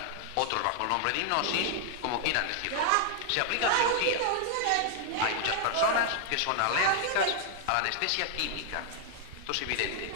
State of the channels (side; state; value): both; different; correlation 0.00